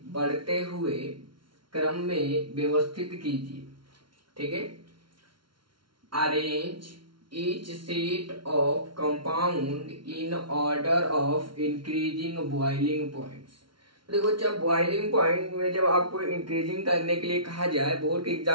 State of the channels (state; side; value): late; left; 0.73 ms